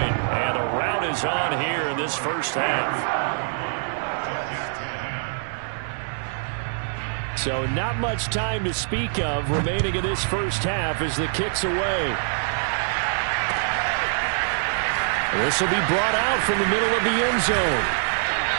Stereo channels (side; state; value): left; silent; digital silence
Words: and a rout is on here in this first half. So not much time to speak of remaining in this first half as the kick's away. This will be brought out from the middle of the end zone.